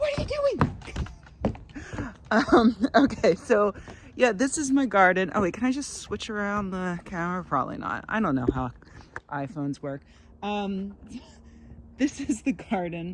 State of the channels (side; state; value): both; identical; correlation 1.00